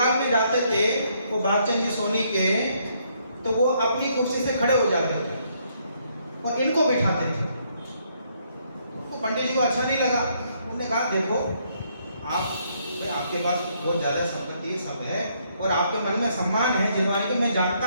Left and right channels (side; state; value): both; inverted; correlation -0.71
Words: में जाते थे, वो भागचंद जी सोनी के, तो वो अपनी कुर्सी से खड़े हो जाते थे और इनको बिठाते थे। तो पंडित जी को अच्छा नहीं लगा। उन्होंने कहा देखो आपके पास बहुत ज़्यादा संपत्ति है, सब है, और आपके मन में सम्मान है जिनवानी के, मैं